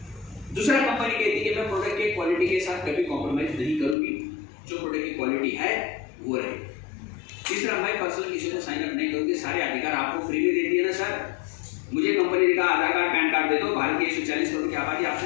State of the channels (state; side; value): drops out; right; at 4.0 s